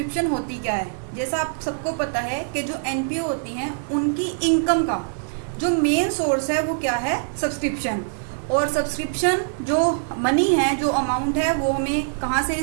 होती क्या है। जैसा आप सबको पता है कि जो एनपीओ होती हैं उनकी इनकम का जो मेन सोर्स है वो क्या है, सब्सक्रिप्शन। और सब्सक्रिप्शन जो मनी है, जो अमाउंट है, वो हमें कहाँ से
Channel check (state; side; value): silent; left; digital silence